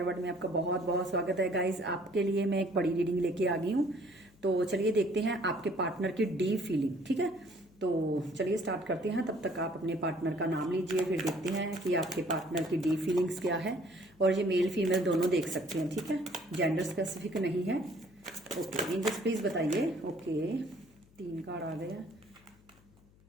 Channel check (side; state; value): left; noise; hum, 28 dB below the sound